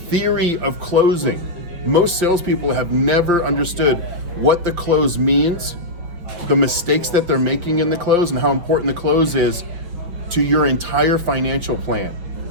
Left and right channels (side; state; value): left; late; 5.9 ms